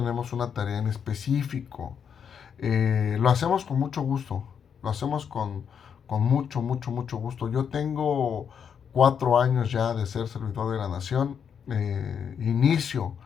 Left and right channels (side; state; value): right; quieter; 7.4 dB